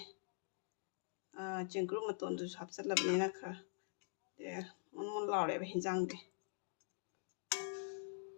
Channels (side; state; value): right; silent; digital silence